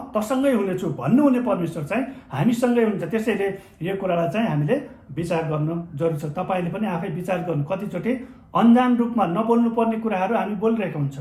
तसँगै हुनेछु भन्नुहुने परमेश्वर चाहिँ हामीसँगै हुन्छ। त्यसैले यो कुरालाई चाहिँ हामीले विचार गर्नु जरुरी छ। तपाईँले पनि आफै विचार गर्नु। कतिचोटि अन्जान रूपमा नबोल्नु पर्ने कुराहरू हामी बोलिरहेका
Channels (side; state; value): both; identical; correlation 1.00